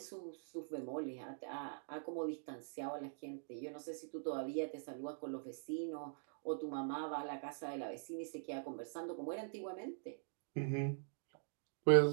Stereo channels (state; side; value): silent; left; digital silence